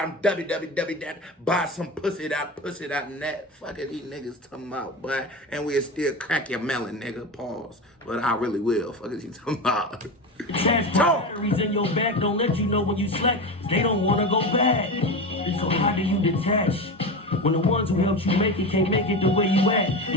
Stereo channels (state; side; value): normal; both; correlation 0.23